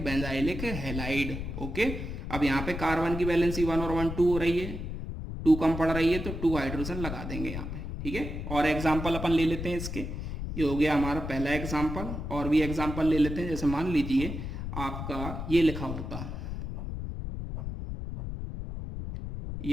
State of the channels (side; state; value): left; noise; rumble, 6 dB below the sound